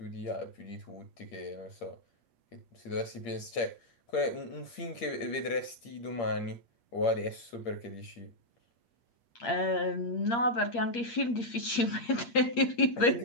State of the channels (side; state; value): right; late; 8.6 ms